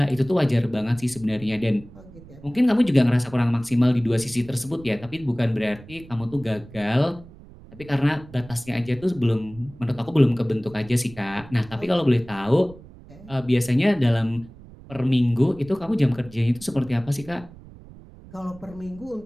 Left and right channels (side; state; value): right; noise; rumble, 20 dB below the sound